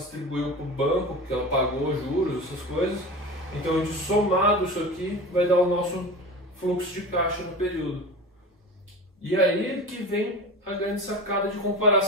para o banco, que ela pagou juros, essas coisas. Então, a gente somado isso aqui vai dar o nosso fluxo de caixa no período. E aí que vem a grande sacada de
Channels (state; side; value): normal; both; correlation 0.31